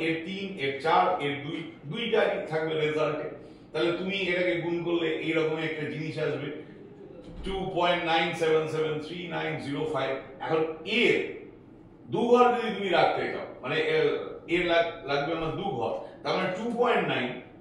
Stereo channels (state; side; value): identical; both; correlation 1.00